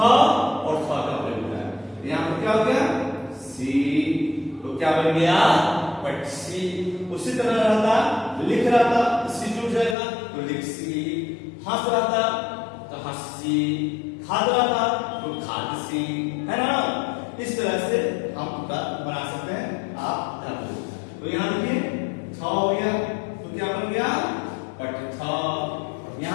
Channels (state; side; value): drops out; right; at 10.0 s